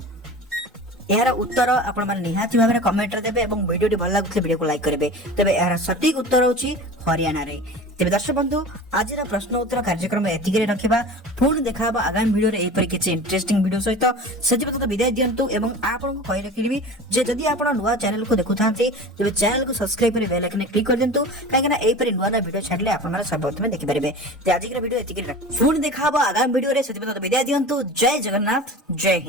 यार उत्तर आपण माने निहाती भाबरे कमेंट रे देबे एवं वीडियोटी भल लागुथले वीडियो को लाइक करबे। तेबे यार सटीक उत्तर होची हरियाणा रे। तेबे दर्शक बंधु आज प्रश्न उत्तर कार्यक्रम एतिके रखिबा। पुणी देखाबा आगामी वीडियो रे एपरि किछि इंटरेस्टिंग वीडियो सहित सेति पत विदाय दियंतु एवं आपन को कहि रखिबी जे जदि आपण नुवा चैनल को देखुथांती तेबे चैनल को सब्सक्राइब करि बेल आइकन क्लिक कर दियंतु काहेकि ना एपरि नुवा वीडियो छाडले आपण माने सर्वप्रथम देखि परिबे। ते आज के वीडियो एतिके पुणी देखाबा आगामी वीडियो रे सेति पत विदाय दियंतु। जय जगन्नाथ जय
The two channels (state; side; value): normal; both; correlation 0.35